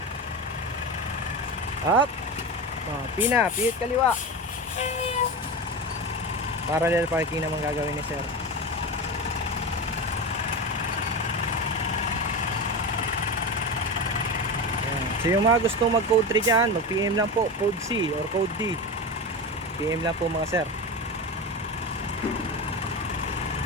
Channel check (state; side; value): normal; both; correlation 0.23